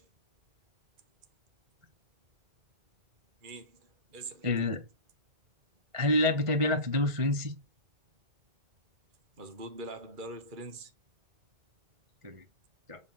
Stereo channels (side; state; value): left; late; 1.5 ms